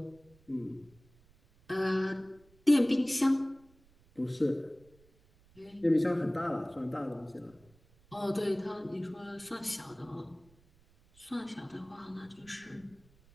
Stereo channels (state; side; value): noise; right; rumble, 29 dB below the sound